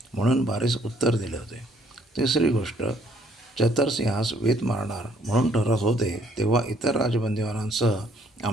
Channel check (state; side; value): normal; both; correlation 0.65